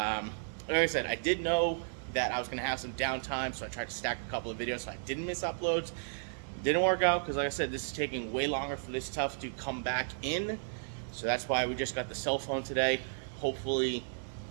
I said, I did know that I was going to have some downtime, so I tried to stack a couple of videos so I didn't miss uploads. Didn't work out because, like I said, this is taking way longer for this stuff to come back in. So that's why we just got the cell phone today. Hopefully,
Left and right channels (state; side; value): silent; left; digital silence